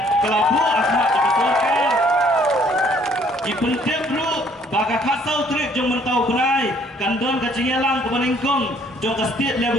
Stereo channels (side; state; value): both; normal; correlation 0.62